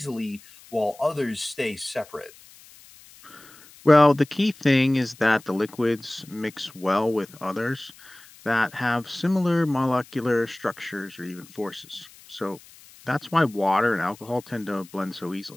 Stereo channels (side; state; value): left; noise; hiss, 23 dB below the sound